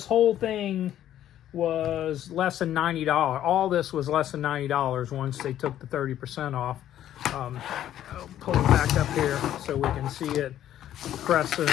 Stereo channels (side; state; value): right; quieter; 11.7 dB